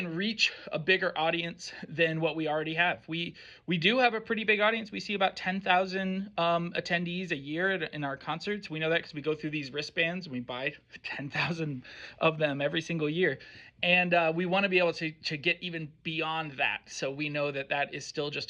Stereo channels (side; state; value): both; identical; correlation 1.00